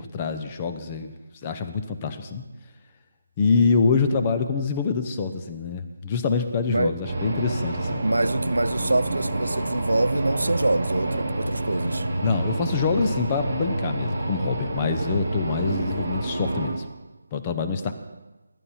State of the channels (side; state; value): both; inverted; correlation -0.76